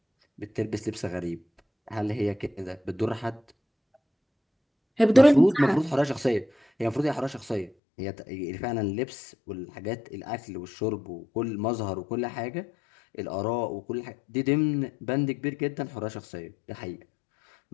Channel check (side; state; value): right; drops out; at 7.7 s